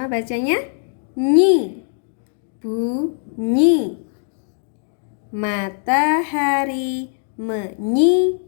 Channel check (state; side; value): silent; right; digital silence